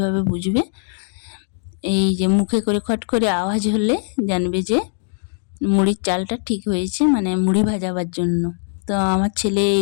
বুঝবে, এই যে মুখে করে খট করে আওয়াজ হলে জানবে যে মুড়ির চালটা ঠিক হয়েছে, মানে মুড়ি ভাজাবার জন্য। তো আমার ছেলে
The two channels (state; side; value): silent; right; 65 dB below the other